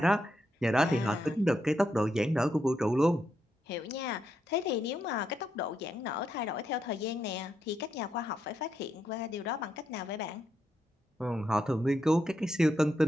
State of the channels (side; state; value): both; normal; correlation 0.81